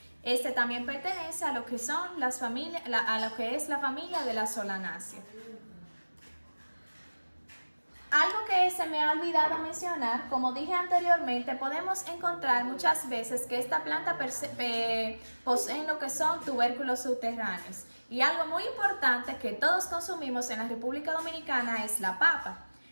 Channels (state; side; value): inverted; both; correlation -1.00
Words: Este también pertenece a lo que son las familias, a lo que es la familia de la Solanaceae. Algo que se me ha olvidado mencionar, como dije anteriormente, podemos encontrar muchas veces que esta planta posee lo que son tubérculos subterráneos. Y algo muy importante que todos consumimos en la República Dominicana es la papa.